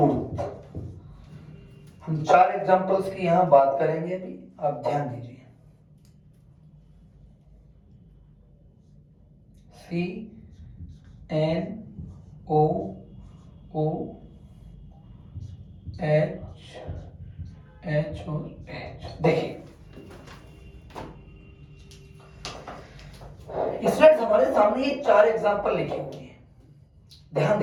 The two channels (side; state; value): both; identical; correlation 1.00